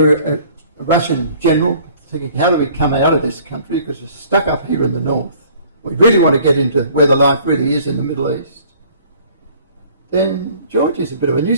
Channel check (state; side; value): inverted; both; correlation -0.54